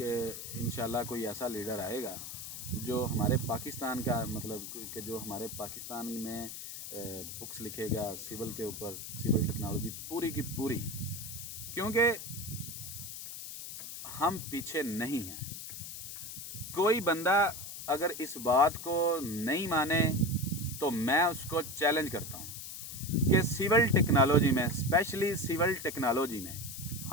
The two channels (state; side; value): noise; left; hiss, 9 dB below the sound